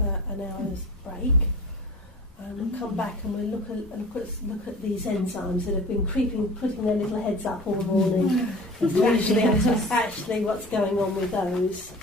an hour's break. And we'll come back and we'll look at these enzymes that have been putting their little heads up all the morning. actually what's going on with those.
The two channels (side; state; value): both; normal; correlation 0.40